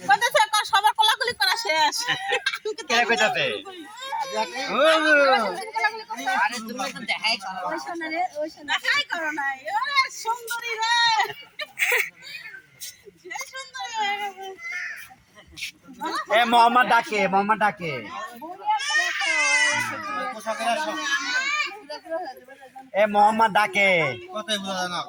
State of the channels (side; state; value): both; identical; correlation 1.00